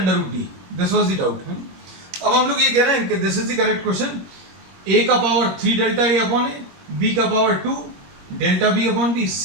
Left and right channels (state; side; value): late; left; 21 ms